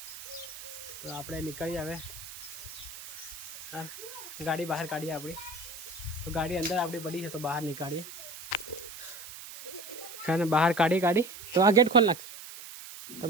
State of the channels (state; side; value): noise; right; hiss, 13 dB below the sound